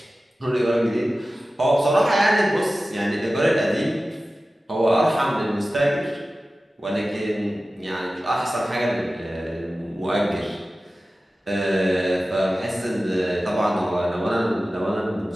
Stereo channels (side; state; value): both; normal; correlation 0.95